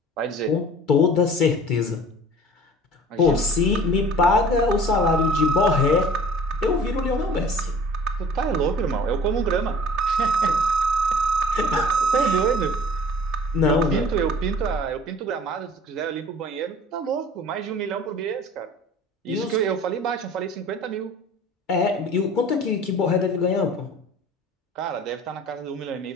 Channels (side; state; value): both; normal; correlation 0.46